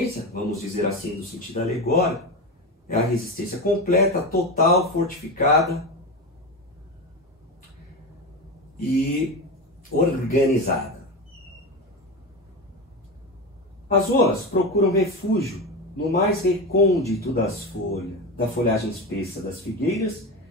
vamos dizer assim, no sentido alegórico, é a resistência completa, total, fortificada e organizada. As rolas procuram refúgio no mais recôndito da folhagem espessa das figueiras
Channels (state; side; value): normal; both; correlation 0.20